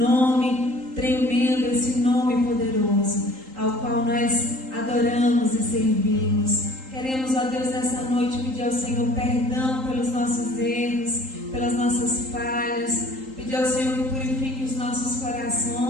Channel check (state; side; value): late; left; 3.8 ms